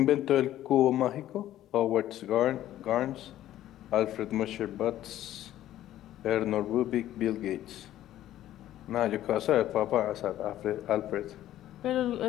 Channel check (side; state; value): right; quieter; 13.1 dB